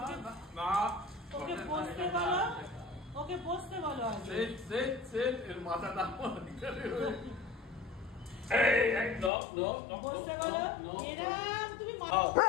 ওকে বসতে বলো। ওকে বসতে বলো আগে। সেট এর মাথাটা এই নো নো নো বসতে বলো। এরাম তুমি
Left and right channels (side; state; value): right; drops out; at 9.3 s